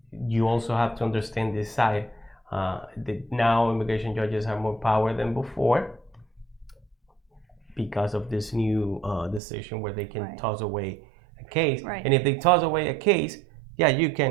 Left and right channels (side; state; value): left; drops out; at 9.4 s